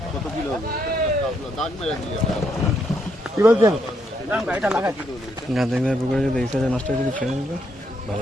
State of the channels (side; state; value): both; normal; correlation 0.76